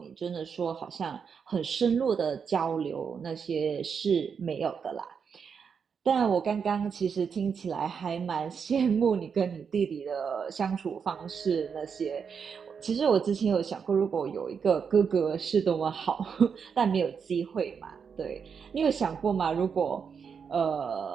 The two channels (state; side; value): quieter; left; 6.4 dB